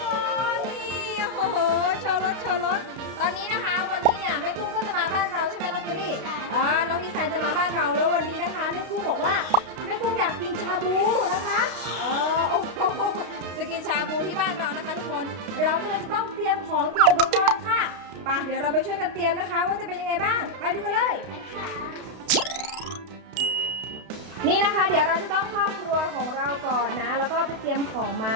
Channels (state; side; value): late; left; 32 ms